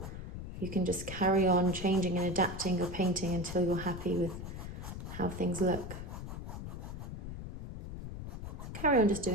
you can just carry on changing and adapting your painting until you're happy with how things look. Carry on just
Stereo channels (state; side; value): noise; left; rumble, 8 dB below the sound